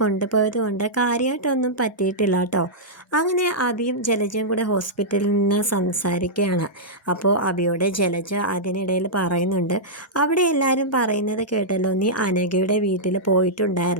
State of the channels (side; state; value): both; normal; correlation -0.10